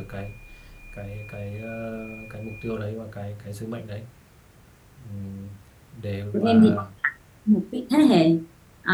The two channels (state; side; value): identical; both; correlation 1.00